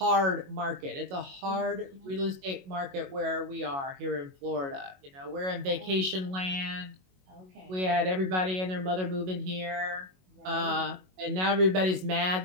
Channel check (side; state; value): left; late; 22 ms